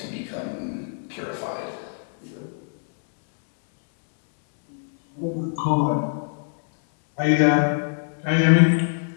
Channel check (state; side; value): silent; right; digital silence